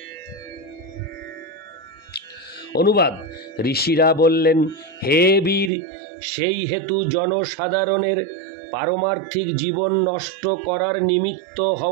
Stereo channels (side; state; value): left; drops out; at 5.7 s